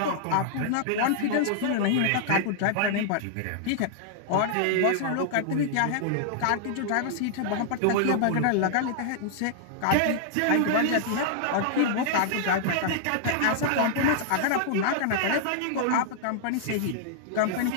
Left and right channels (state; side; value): different; both; correlation -0.01